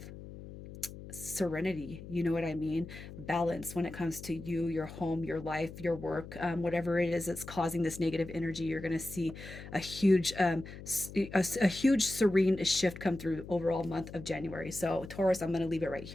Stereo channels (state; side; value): noise; left; hum, 13 dB below the sound